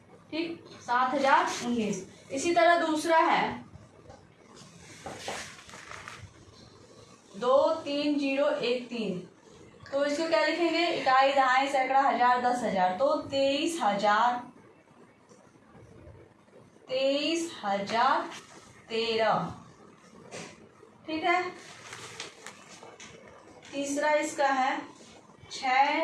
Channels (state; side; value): identical; both; correlation 1.00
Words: ठीक, 7,019। इसी तरह दूसरा है 23013, तो इसको क्या लिखेंगे? इकाई दहाई सैकड़ा 1000 10,000, तो 23,013। ठीक है, तीसरा इसका है